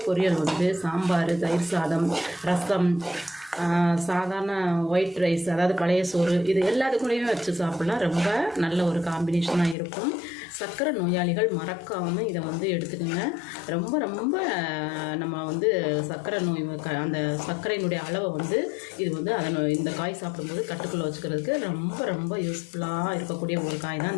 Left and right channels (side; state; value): right; drops out; at 9.8 s